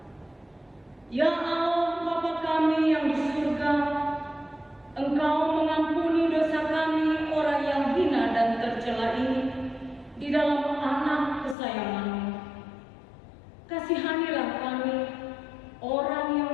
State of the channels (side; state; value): right; drops out; at 11.6 s